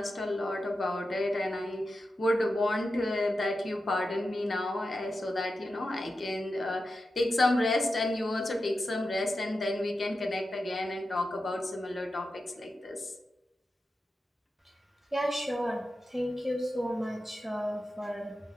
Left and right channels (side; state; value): both; normal; correlation 0.90